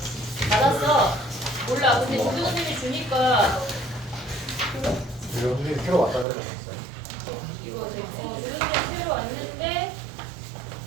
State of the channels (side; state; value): left; drops out; at 6.2 s